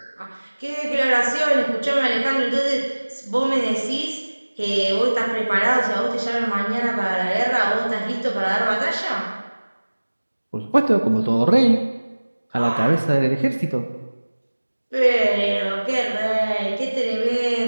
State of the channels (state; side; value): inverted; both; correlation -1.00